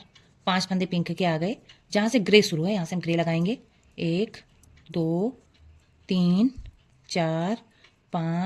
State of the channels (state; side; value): identical; both; correlation 1.00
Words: 5 फंदे पिंक के आ गए। जहाँ से ग्रे शुरू है यहाँ से हम ग्रे लगाएंगे। 1 2 3 4